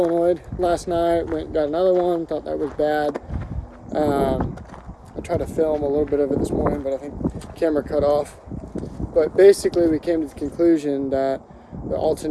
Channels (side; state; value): both; identical; correlation 1.00